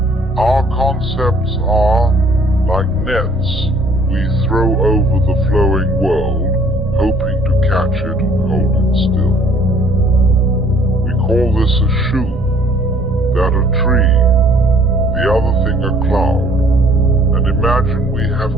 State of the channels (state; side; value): normal; both; correlation 0.58